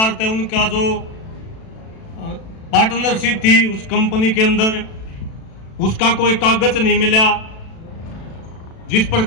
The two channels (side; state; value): right; late; 36 ms